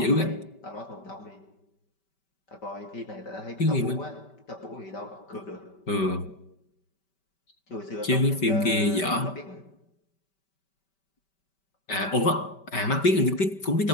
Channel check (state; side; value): late; right; 5.2 ms